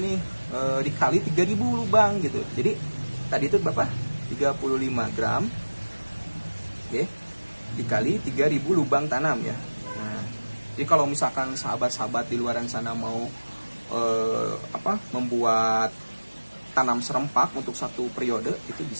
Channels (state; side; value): inverted; both; correlation -1.00